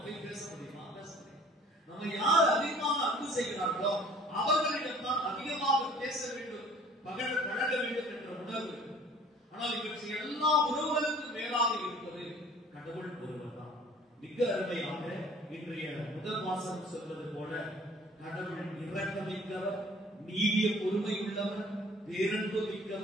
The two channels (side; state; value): both; normal; correlation 0.51